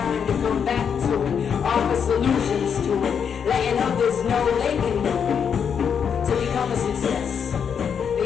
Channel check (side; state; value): right; quieter; 7.2 dB